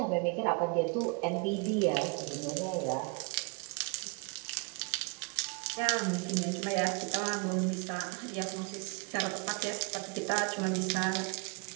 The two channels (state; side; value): quieter; left; 31.7 dB